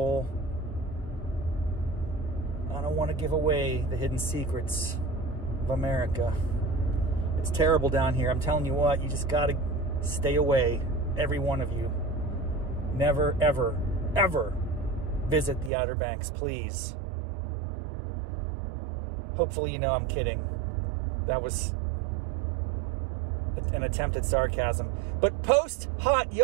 I don't want to give away the hidden secrets of America. It's terrible down here. I'm telling you what, you just got to stay away, every one of you. Never, ever, ever visit the Outer Banks, please. Hopefully you know I'm kidding. That was an attempt at sarcasm. But post-hot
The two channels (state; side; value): drops out; left; at 15.7 s